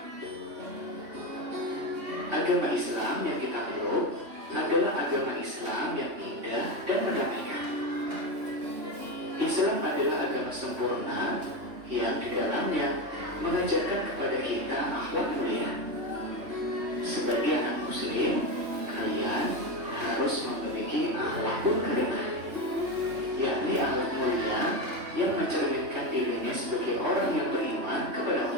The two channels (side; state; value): left; late; 3.2 ms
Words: Agama Islam yang kita peluk adalah agama Islam yang indah dan mendamaikan. Islam adalah agama sempurna yang di dalamnya mengajarkan kepada kita akhlak mulia. Sebagai anak muslim, kalian harus memiliki akhlakul karimah, yakni akhlak mulia yang mencerminkan dirinya sebagai orang yang beriman kepada